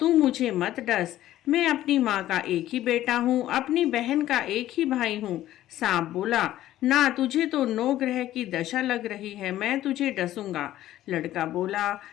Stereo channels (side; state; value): right; quieter; 13.7 dB